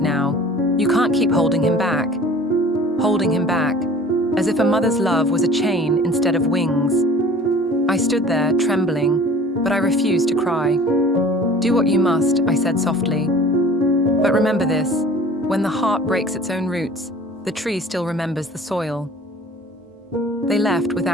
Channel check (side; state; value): both; normal; correlation 0.46